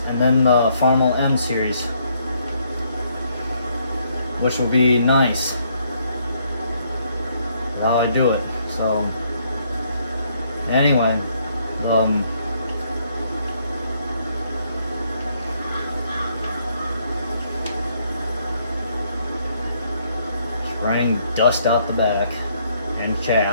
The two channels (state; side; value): inverted; both; correlation -0.70